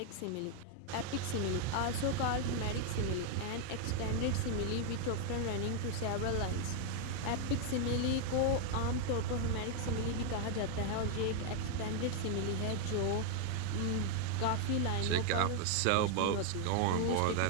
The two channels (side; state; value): both; different; correlation 0.00